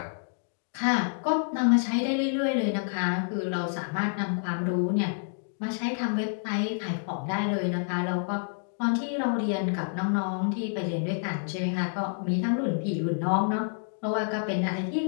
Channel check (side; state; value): right; silent; digital silence